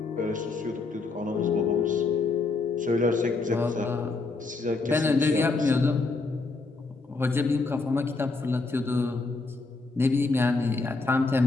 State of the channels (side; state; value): right; quieter; 3.8 dB